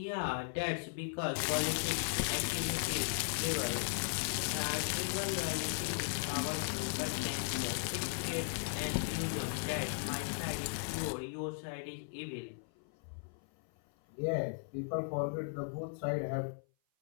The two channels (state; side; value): silent; right; 53 dB below the other